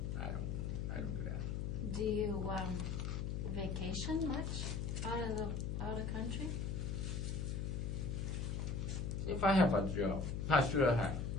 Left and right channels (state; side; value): noise; left; hum, 1 dB below the sound